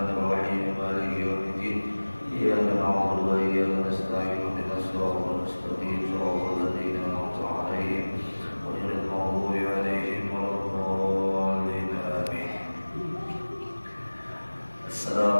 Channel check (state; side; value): inverted; both; correlation -1.00